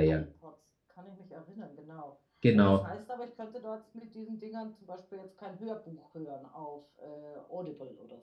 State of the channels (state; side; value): identical; both; correlation 1.00